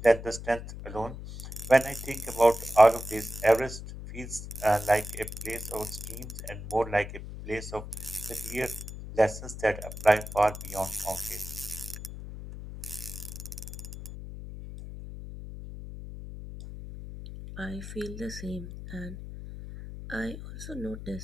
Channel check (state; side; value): noise; left; hum, 10 dB below the sound